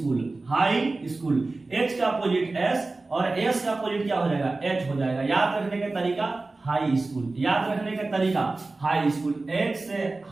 high school. H का अपोजिट एस और एस का अपोजिट क्या हो जाएगा, एच हो जाएगा। याद रखने का तरीका हाई स्कूल, याद रखने का तरीका हाई स्कूल। एच से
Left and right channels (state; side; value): quieter; left; 3.3 dB